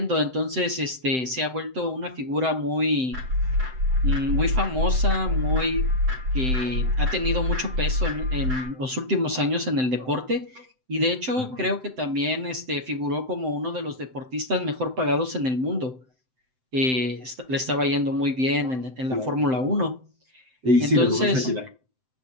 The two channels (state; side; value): late; left; 7.8 ms